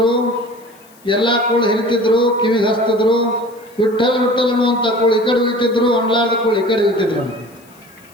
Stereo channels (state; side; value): noise; left; hiss, 28 dB below the sound